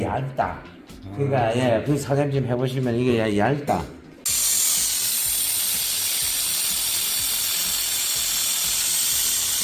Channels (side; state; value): both; identical; correlation 1.00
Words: 얇다. 그러니까 예, 그 사장님 좀 해보시면 이게 얇다.